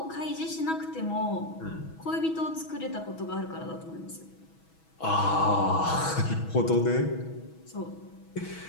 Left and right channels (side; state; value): right; late; 6.2 ms